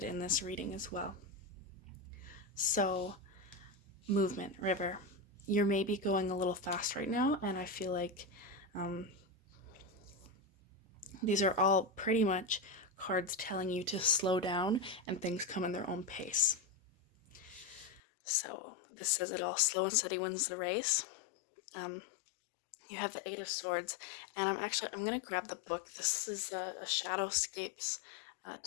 in this reading as well. So, movement, river. You're maybe going a little fast right now, and I feel like these are all pretty much cards telling you to slow down and things come in their own pace. So this says it all. Slow and steady wins the race. You have the Eight of Swords, and I'm going to grab the book. This is a Shadowscapes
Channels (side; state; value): right; drops out; at 18.0 s